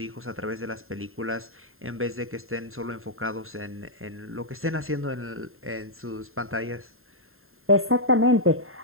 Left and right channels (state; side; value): late; left; 0.61 ms